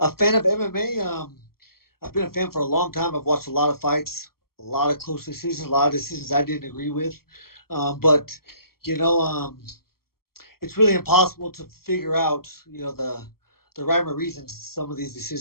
fan of MMA. I've been a fan for a long time. I've watched a lot of fights, a lot of close decisions, a lot of decisions I didn't agree with. But you know, it's really impossible to figure out, the rhyme or reason some of these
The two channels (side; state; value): right; late; 0.93 ms